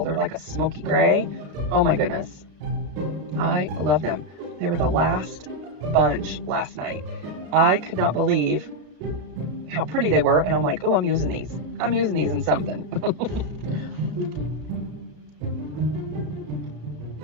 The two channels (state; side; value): late; left; 33 ms